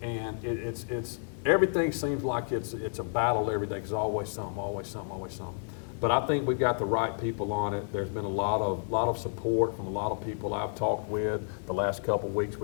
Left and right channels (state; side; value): silent; right; digital silence